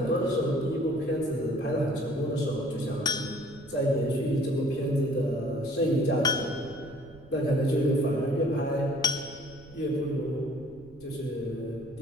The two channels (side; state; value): right; noise; rumble, 22 dB below the sound